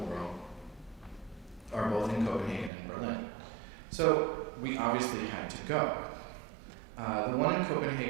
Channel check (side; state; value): left; drops out; at 2.7 s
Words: world are both in Copenhagen and Berlin. So we obviously had to go. The one in